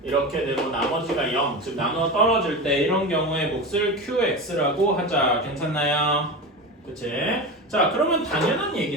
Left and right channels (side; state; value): both; normal; correlation 0.25